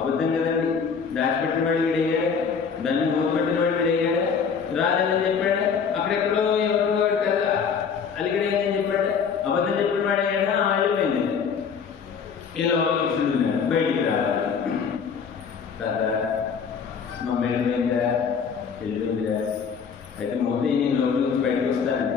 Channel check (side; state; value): right; quieter; 6.3 dB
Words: కదండి, దాచిపెట్టిన వాడు వీడయ్యాడు, దాన్ని మూతపెట్టిన వాడు వీడయ్యాడు, రాలేదని చెప్పాడు. అక్కడెక్కడో ఎవరు వాడు కదా అలిగడైందని చెప్పాడు, అబద్ధం చెప్పిన వాడు అయ్యాడా, వెళ్ళిపోయింది. ఇలా కృష్ణుడు బయటికి రావాలి. తాత మా వెళ్ళిపోయిందా, వెళ్ళిపోయిందిరా, అయితే ముందు నేను లోపల నుంచి బయటకు